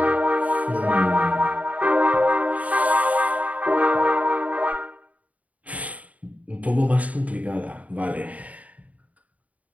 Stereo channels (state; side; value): late; left; 0.070 ms